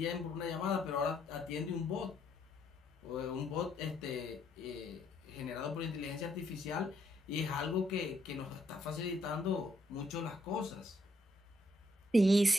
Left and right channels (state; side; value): normal; both; correlation 0.73